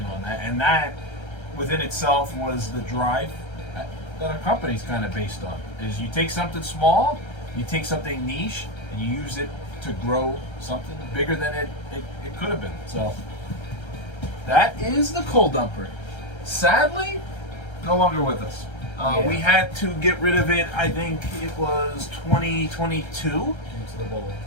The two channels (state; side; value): late; right; 1.3 ms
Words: on that. And that, within itself, was the drive that our company's kind of based on. Is you take something small, you take something niche, and you use it to grow something bigger than it could have been. So that is the coal dumper. Sadly, no longer with us. Yeah. We had to get rid of it, I think it was 2022, into the bowl.